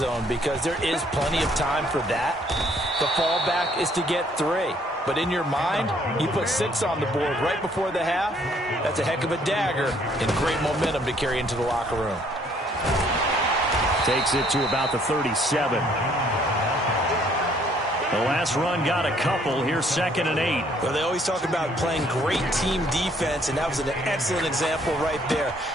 because there is plenty of time for that. The fallback is to get 3. But in your mind, you put 6 on the board right before the half. That's a heck of a dagger and great momentum to carry into the locker room. Takes it to about the 37. The last run got a couple. Here's 2nd and 8. Well, they always talk about playing great team defense, and that was an excellent example right there.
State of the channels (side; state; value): both; normal; correlation 0.63